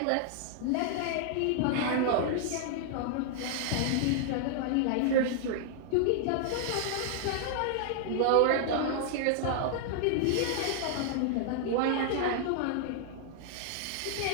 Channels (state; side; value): different; both; correlation -0.01